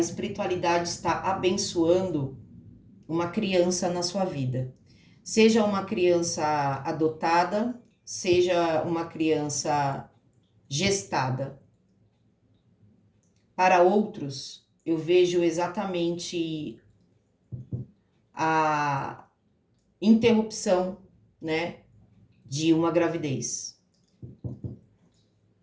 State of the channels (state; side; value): identical; both; correlation 1.00